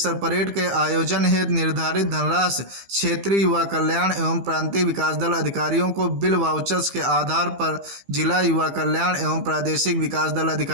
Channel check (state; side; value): late; left; 15 ms